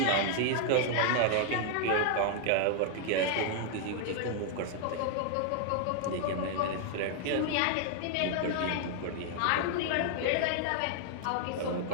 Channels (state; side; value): different; both; correlation -0.01